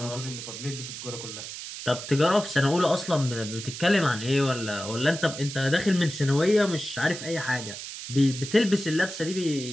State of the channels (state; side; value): noise; right; hiss, 9 dB below the sound